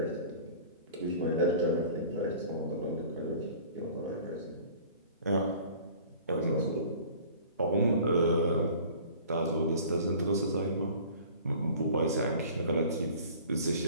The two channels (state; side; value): inverted; both; correlation -0.46